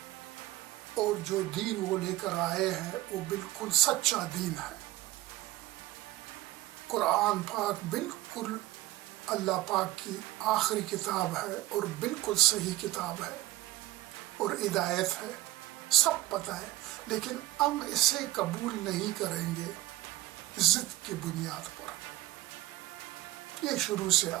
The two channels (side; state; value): left; quieter; 16.7 dB